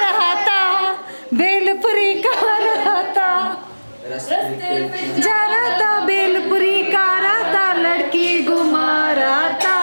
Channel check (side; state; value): both; inverted; correlation -1.00